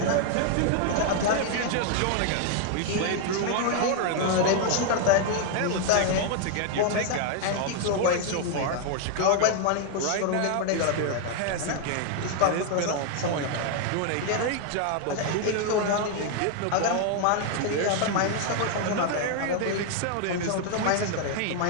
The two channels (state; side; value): different; both; correlation 0.00